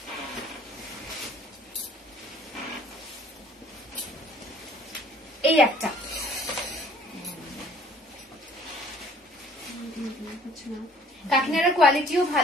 এই একটা কাকিনাড়ার কোয়ালিটিও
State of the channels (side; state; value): both; normal; correlation 0.55